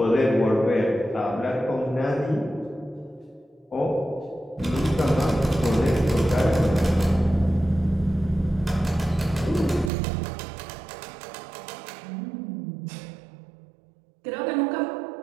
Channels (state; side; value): drops out; left; at 9.9 s